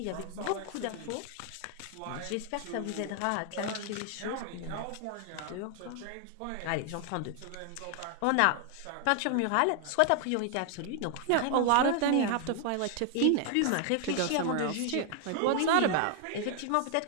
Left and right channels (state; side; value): different; both; correlation 0.00